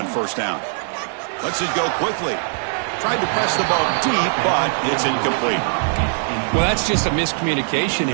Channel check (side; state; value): left; silent; digital silence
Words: 1st down. Lets it go quickly. Tried to press the ball deep, but it's incomplete. Well, that's just a miscommunication